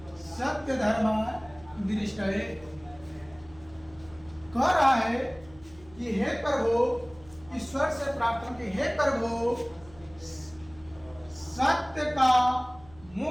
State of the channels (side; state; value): right; noise; hum, 23 dB below the sound